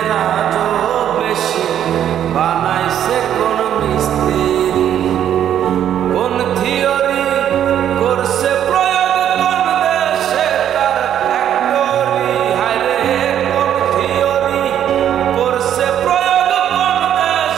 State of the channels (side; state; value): left; quieter; 10.2 dB